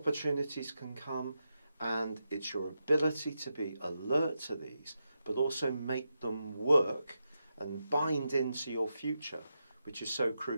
can come, and it's your ability to be alert to these, but also make them work and bind into your future, which is so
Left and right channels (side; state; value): both; inverted; correlation -0.87